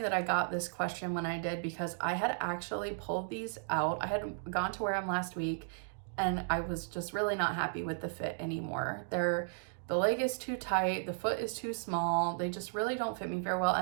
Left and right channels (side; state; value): left; silent; digital silence